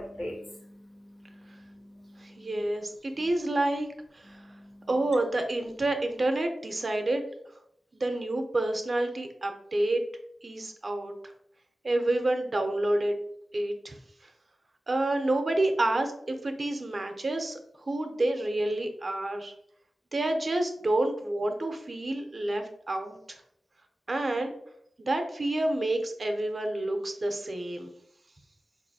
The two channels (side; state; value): both; normal; correlation 0.95